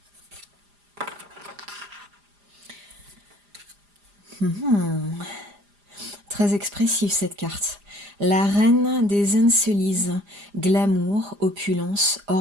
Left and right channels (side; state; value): left; late; 4.9 ms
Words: Très expressive cette carte. La reine des Encelises, glamour, opulence,